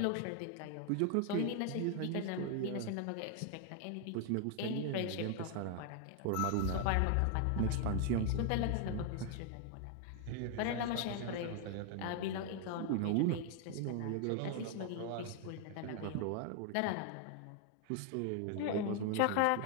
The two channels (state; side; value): different; both; correlation 0.00